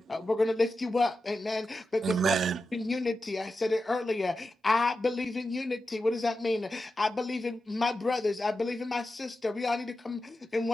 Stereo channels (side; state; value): both; normal; correlation 0.91